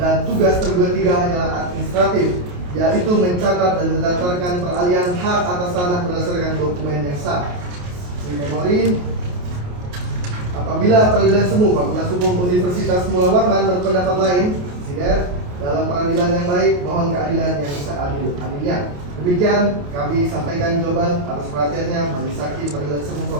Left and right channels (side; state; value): left; late; 28 ms